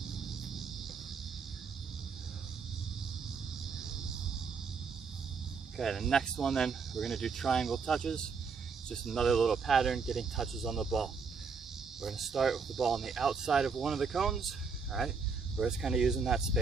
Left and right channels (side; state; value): left; quieter; 5.3 dB